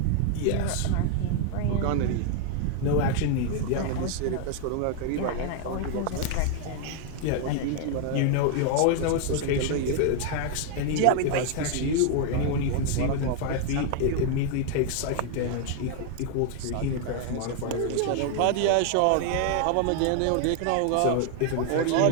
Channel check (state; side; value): different; both; correlation 0.00